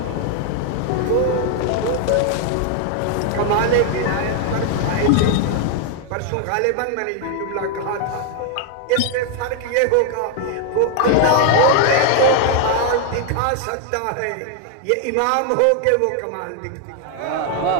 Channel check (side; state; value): both; different; correlation 0.00